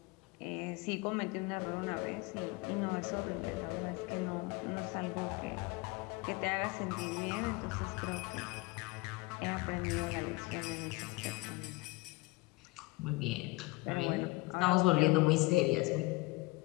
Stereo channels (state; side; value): quieter; right; 23.2 dB